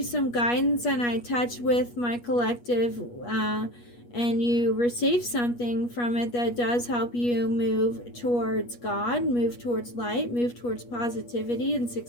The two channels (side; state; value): right; late; 8.3 ms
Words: some guidance, and I touch with my collective, and you receive something from it that does help you move towards God, move towards light, move towards positivity and